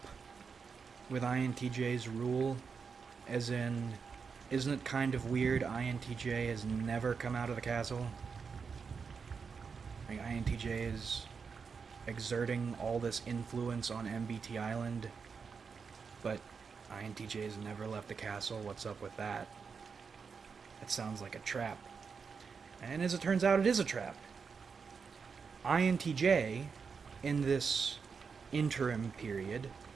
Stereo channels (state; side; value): quieter; left; 5.6 dB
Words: with INTJ's rule, as in, isn't it kind of weird INTJ has never come out of the castle? Like, INTJ is exerting all this influence on MBT Island, but INTJ has never left the castle. What's up with that? That sounds like a trap. And as it turns out, it is a trap. INTJ, in this interim period,